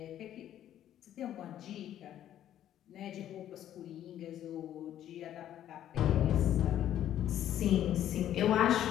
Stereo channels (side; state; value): right; quieter; 11.5 dB